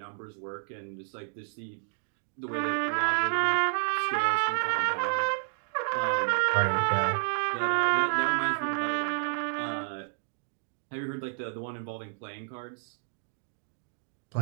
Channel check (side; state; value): left; silent; digital silence